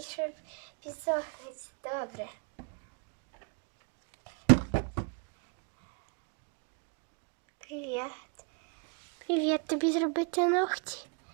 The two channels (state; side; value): quieter; left; 37.9 dB